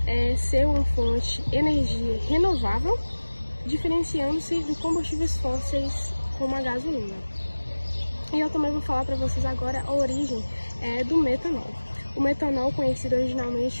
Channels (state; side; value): inverted; both; correlation -1.00